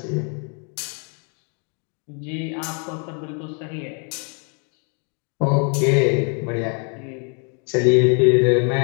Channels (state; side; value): quieter; right; 38.5 dB